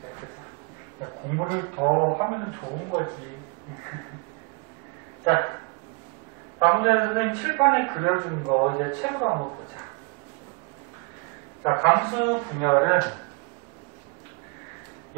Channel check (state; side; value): quieter; left; 30.9 dB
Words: 야, 공부를 더 하면 좋은 거지. 자, 방금 전에 선생님 칠판에 그려준 거 이제 책으로 한번 보자. 자, 감수 분열은